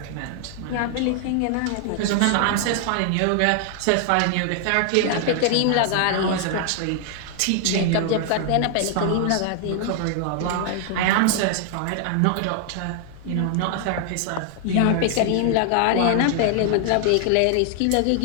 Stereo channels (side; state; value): both; different; correlation 0.00